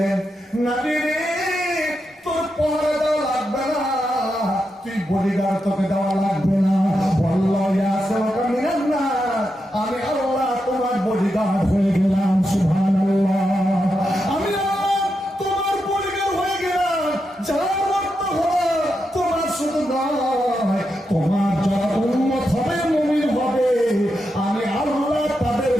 নবী রে তোর পহরা দেওয়া লাগবে না, তুই বডিগার্ড তোকে দেওয়া লাগবে না। আল্লাহ ইয়াসমাকা মিনান নার, আমি আল্লাহ তোমার বডিগার্ড হয়ে গেলাম। সুবহানাল্লাহ, আমি আল্লাহ তোমার বডিগার্ড হয়ে গেলাম। যারা রক্ত হবে তোমার শুধু নয়, তোমার যারা উম্মত হবে মুমিন হবে, আমি আল্লাহ তাদের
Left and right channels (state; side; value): normal; both; correlation 0.86